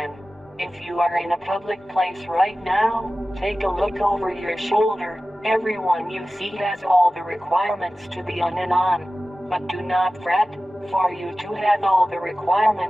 If you are in a public place right now, take a look over your shoulder. Everyone you see has all the requirements to be on and on. But do not fret, for you to have all the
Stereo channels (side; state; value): both; normal; correlation 0.96